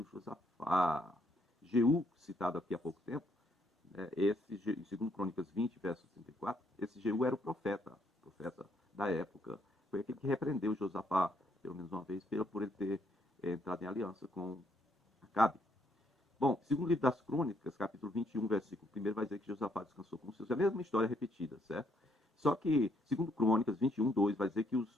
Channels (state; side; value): normal; both; correlation 0.71